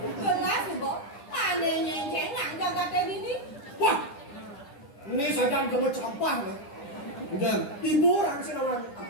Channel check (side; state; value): right; late; 9.9 ms